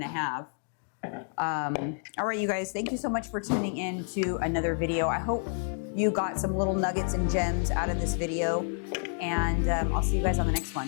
to have. All right, you guys, thank you so much for tuning in to another video. I hope you got some little nuggets and gems out of this video, and I'll see you guys on the next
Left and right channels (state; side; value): silent; right; 58 dB below the other